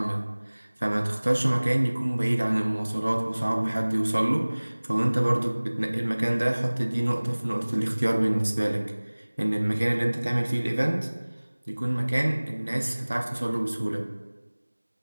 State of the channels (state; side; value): inverted; both; correlation -1.00